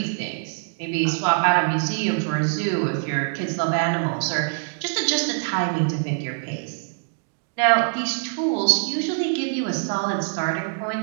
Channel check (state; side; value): silent; left; digital silence